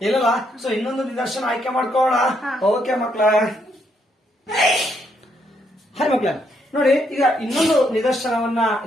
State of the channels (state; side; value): normal; both; correlation 0.74